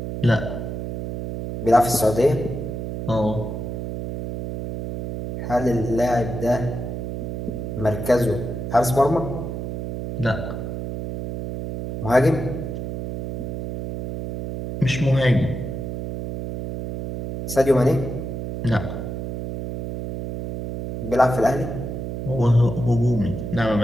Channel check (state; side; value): noise; right; hum, 5 dB below the sound